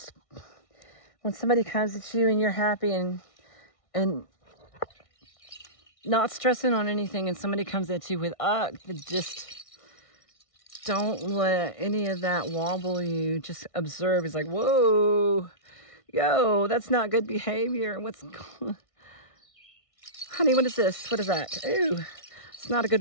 when somebody comes at you and you're happy and not stressing on anything, and somebody comes at you with just don't let any of that wobble you. Just observe. It's like, whoa, yo, that's not good behavior. What's going? Honey, what is this? What is that? Ooh, it's not a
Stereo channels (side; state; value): right; late; 1.6 ms